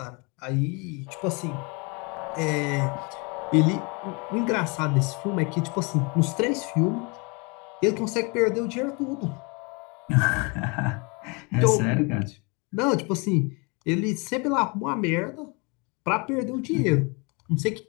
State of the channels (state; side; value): quieter; right; 30.6 dB